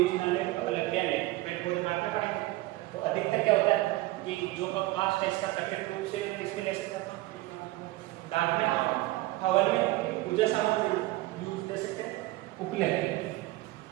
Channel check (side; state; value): left; quieter; 18.6 dB